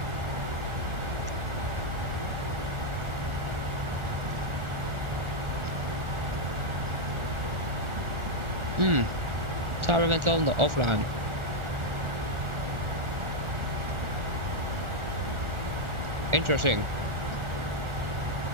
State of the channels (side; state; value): left; late; 1.4 ms